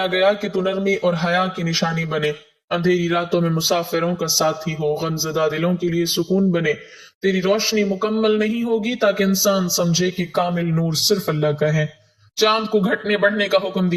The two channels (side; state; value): both; identical; correlation 1.00